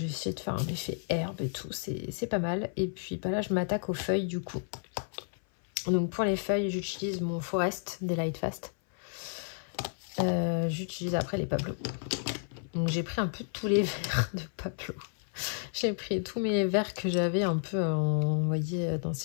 essayé de faire un effet herbe et tout, c'est pas mal. Et puis bah là, je m'attaque aux feuilles du coup. Donc pour les feuilles, j'utilise mon Forest des Lightfast. J'utilise après les Pablo. Donc j'ai pris un peu tous les verres de Pablo. J'ai pris tous mes verres que j'avais un peu, vous voyez, dans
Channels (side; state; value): right; silent; 57 dB below the other